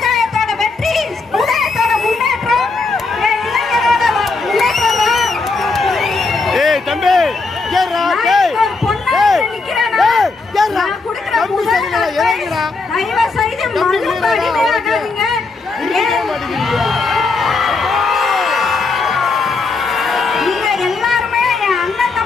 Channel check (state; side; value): quieter; right; 3.9 dB